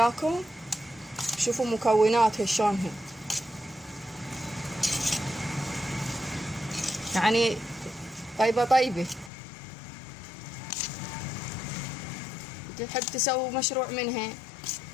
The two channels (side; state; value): right; drops out; at 9.3 s